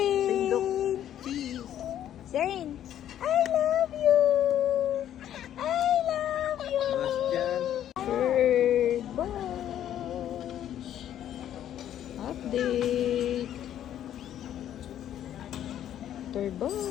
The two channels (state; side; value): quieter; right; 11.0 dB